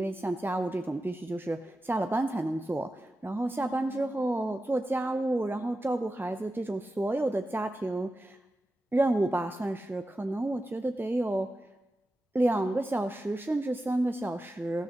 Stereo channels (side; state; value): both; normal; correlation 0.92